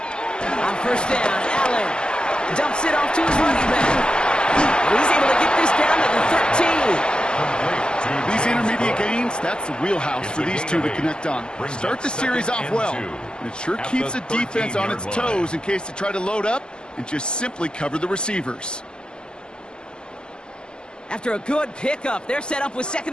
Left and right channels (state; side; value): late; right; 0.047 ms